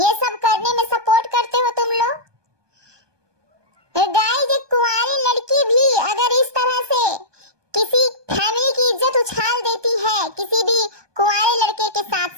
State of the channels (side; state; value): left; late; 1.2 ms